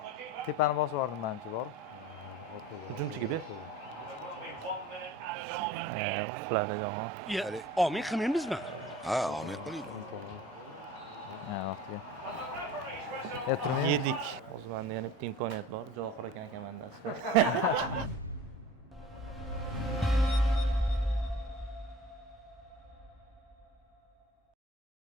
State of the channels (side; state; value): both; normal; correlation 0.40